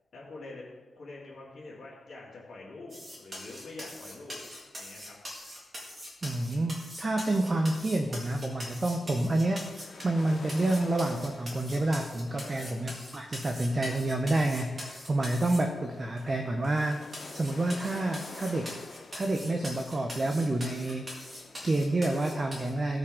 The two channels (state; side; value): normal; both; correlation 0.92